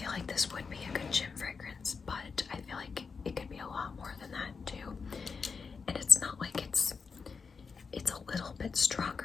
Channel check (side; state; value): right; quieter; 5.3 dB